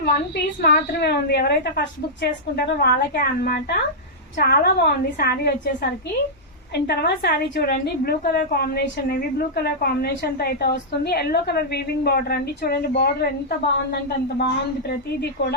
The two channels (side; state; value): both; normal; correlation -0.10